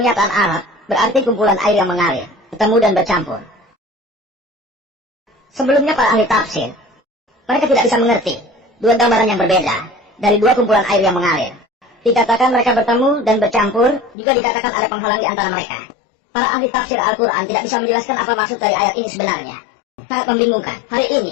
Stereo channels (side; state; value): right; drops out; at 14.2 s